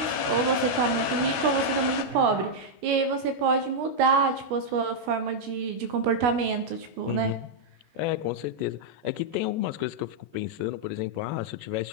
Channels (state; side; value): late; left; 16 ms